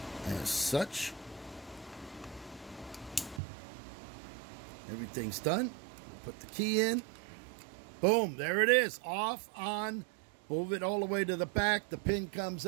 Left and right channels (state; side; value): drops out; left; at 3.4 s